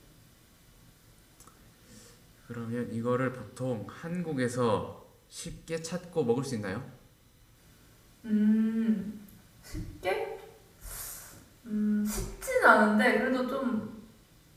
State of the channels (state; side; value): identical; both; correlation 1.00